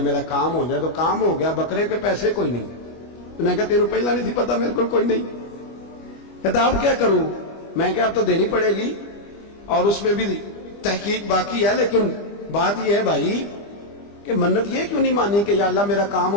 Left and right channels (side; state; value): right; late; 25 ms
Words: میرا کام ہو جائے تو کام ہو گیا، بکرے کے پیسے کوئی نہیں۔ تو میں کہا تیرے پہلا نہیں تھی پتا، میرے کو کوئی نہیں۔ کہتا اب کیا کروں؟ میں کہا اب تو دینی پڑے گی، اور اس میں بھی تحقیق باقی ہے، لیکن بات یہ ہے بھائی کہ منت یہ کیوں نہیں مانی کہ یا اللہ میرا کام